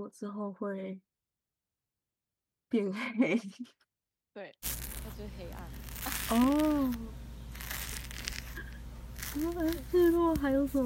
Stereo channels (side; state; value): both; identical; correlation 1.00